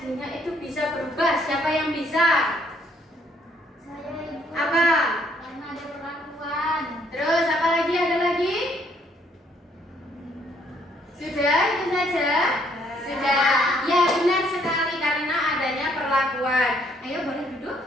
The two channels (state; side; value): normal; both; correlation 0.67